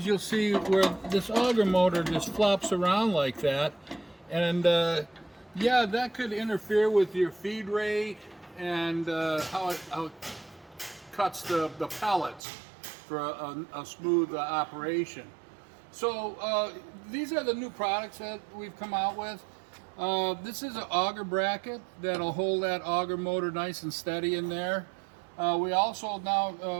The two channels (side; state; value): left; drops out; at 12.4 s